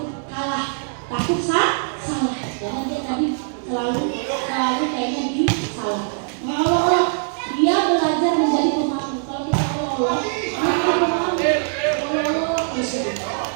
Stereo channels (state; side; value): silent; left; digital silence